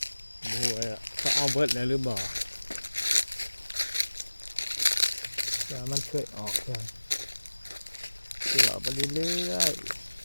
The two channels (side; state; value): both; inverted; correlation -1.00